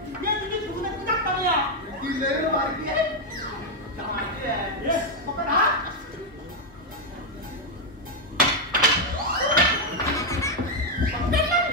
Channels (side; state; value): both; normal; correlation 0.01